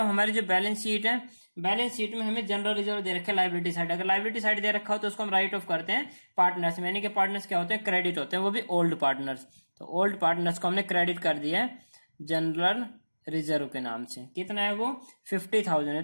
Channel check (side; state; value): both; inverted; correlation -1.00